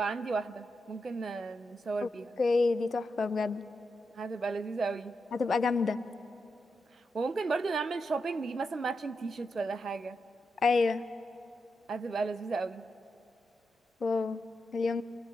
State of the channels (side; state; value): both; normal; correlation 0.86